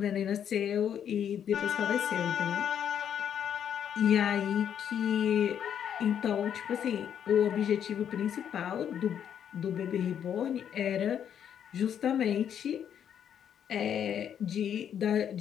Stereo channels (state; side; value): quieter; right; 9.0 dB